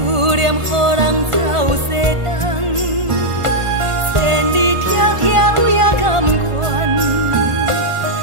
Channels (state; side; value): late; left; 1.5 ms